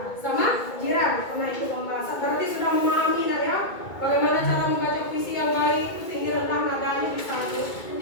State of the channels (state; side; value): late; right; 2.2 ms